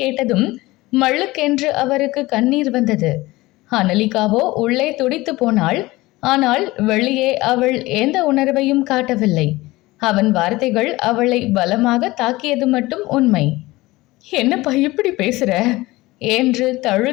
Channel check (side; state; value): right; quieter; 19.8 dB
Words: மள்ளுக்கென்று அவருக்கு கண்ணீர் வந்தது. அனலிகாவோ உள்ளே துடித்து போனாள். ஆனால் வெளியே அவள் எந்த உணர்வையும் காட்டவில்லை. அவன் வார்த்தைகள் அவளை பலமாக தாக்கியது மட்டும் உண்மை. என்னப்பா இப்படி பேசுற என்று